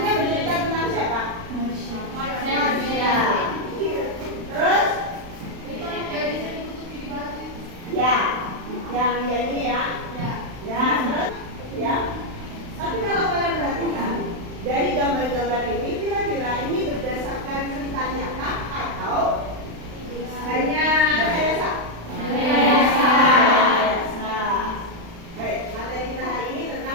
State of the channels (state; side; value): late; left; 35 ms